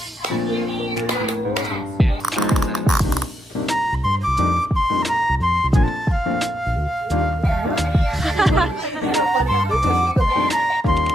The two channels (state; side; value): normal; both; correlation 0.81